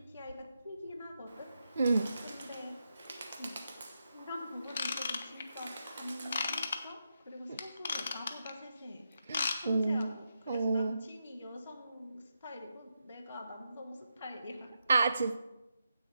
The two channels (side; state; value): both; inverted; correlation -0.85